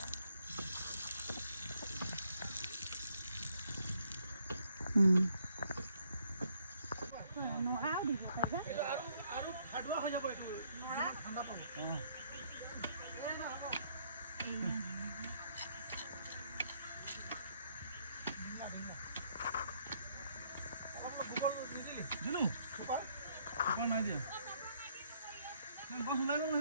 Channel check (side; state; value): both; inverted; correlation -0.69